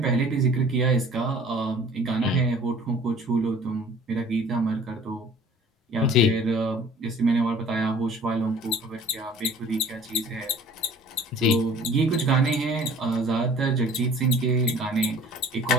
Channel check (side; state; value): both; normal; correlation 0.49